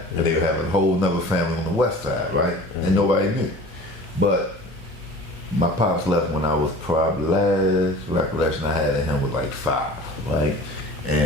and they would have a whole nother family on the west side, right? And nobody knew. But my pops left when I was probably, last recollection I had of him was like 5, right?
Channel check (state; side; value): normal; both; correlation 0.42